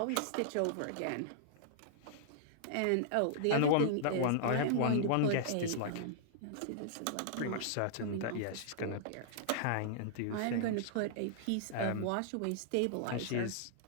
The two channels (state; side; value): different; both; correlation -0.01